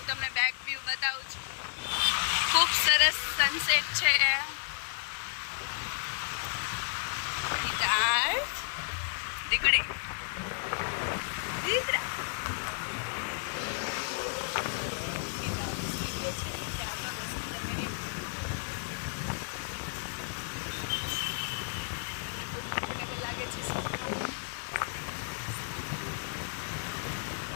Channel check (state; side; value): silent; right; digital silence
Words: તમને બેક વ્યૂ બતાવું છું. ખૂબ સરસ સનસેટ છે. દીકરી દીકરા